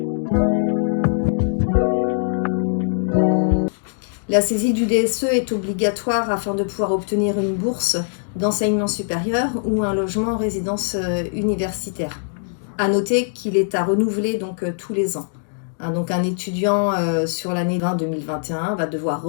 La saisie du DSE est obligatoire afin de pouvoir obtenir une bourse d'enseignement supérieur ou un logement en résidence universitaire. À noter qu'il est à renouveler donc tous les ans. Donc un étudiant sur l'année 2021 va devoir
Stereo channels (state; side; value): silent; right; digital silence